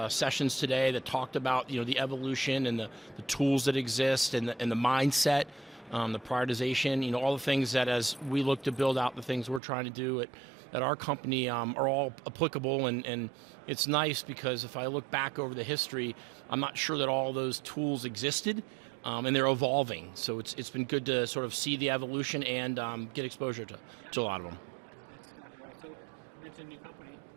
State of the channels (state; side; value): drops out; left; at 9.6 s